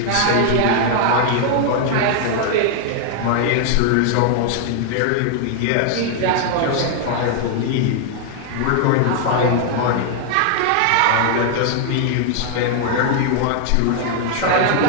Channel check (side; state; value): both; different; correlation 0.00